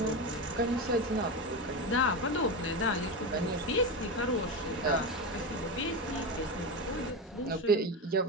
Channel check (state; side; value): normal; both; correlation 0.18